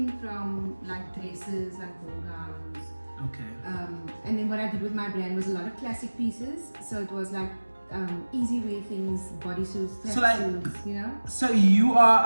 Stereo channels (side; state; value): both; inverted; correlation -1.00